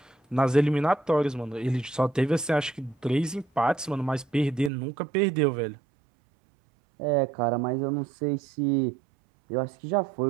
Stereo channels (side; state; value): left; drops out; at 4.7 s